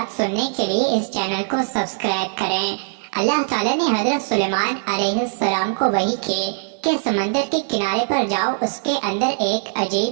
سننے کے لیے اس چینل کو سبسکرائب کریں۔ اللہ تعالیٰ نے حضرت سلیمان علیہ السلام کو وحی کی کہ سمندر کے کنارے پر جاؤ، اس کے اندر ایک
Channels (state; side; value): silent; left; 65 dB below the other